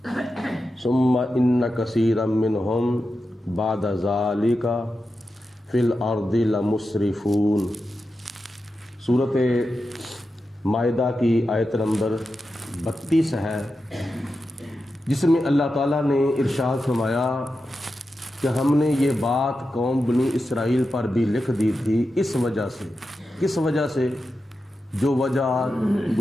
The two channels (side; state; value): both; normal; correlation 0.90